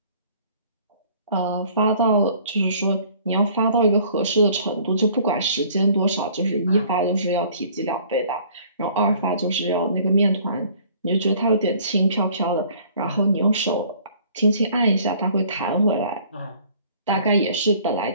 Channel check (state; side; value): inverted; both; correlation -0.55